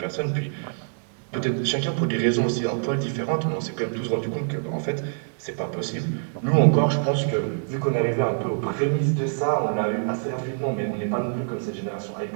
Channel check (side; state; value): left; silent; 62 dB below the other